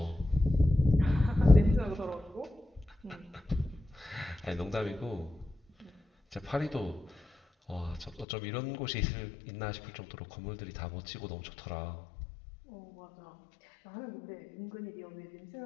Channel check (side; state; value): right; drops out; at 8.2 s